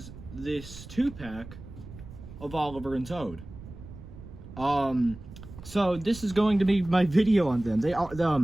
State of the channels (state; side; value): noise; right; rumble, 15 dB below the sound